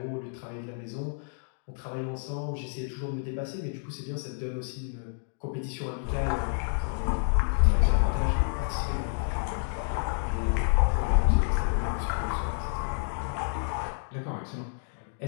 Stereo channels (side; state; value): right; silent; digital silence